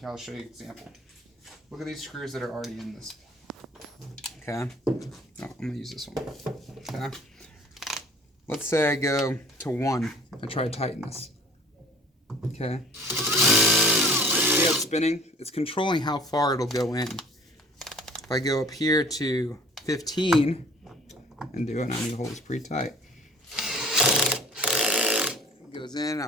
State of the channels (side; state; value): both; normal; correlation 0.49